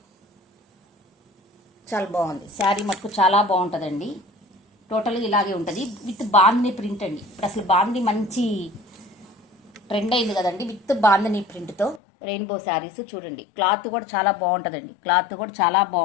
చాలా బాగుంది. శారీ మటుకు చాలా బాగుంటుందండి. టోటల్గా ఇలాగే ఉంటుంది విత్ బాందిని ప్రింట్ అండి. ఇప్పుడు అసలు బాందిని మంచి ట్రెండ్ అయింది కదండి, విత్ బాందిని ప్రింట్తో రెయిన్బో శారీస్ చూడండి. క్లాత్ కూడా చాలా బాగుంటుందండి, క్లాత్ కూడా చాలా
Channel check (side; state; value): right; drops out; at 12.0 s